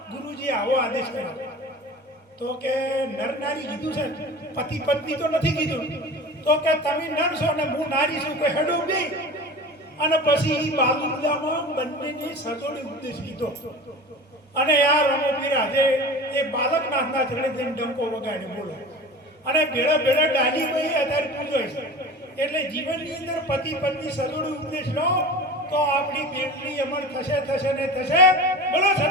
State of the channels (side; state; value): both; normal; correlation 0.35